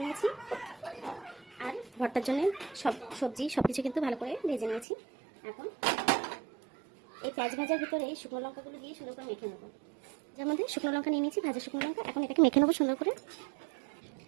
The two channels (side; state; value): left; drops out; at 4.9 s